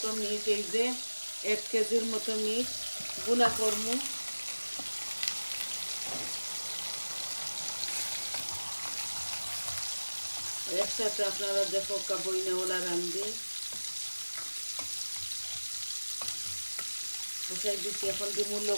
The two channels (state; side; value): inverted; both; correlation -1.00